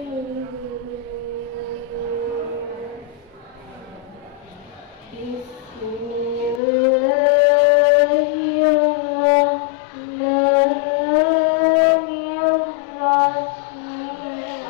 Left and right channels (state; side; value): drops out; right; at 6.6 s